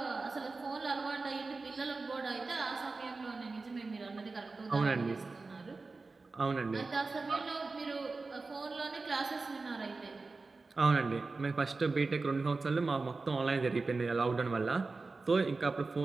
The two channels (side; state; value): left; quieter; 3.8 dB